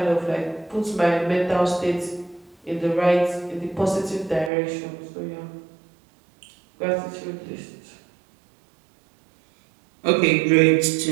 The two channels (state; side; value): drops out; left; at 4.5 s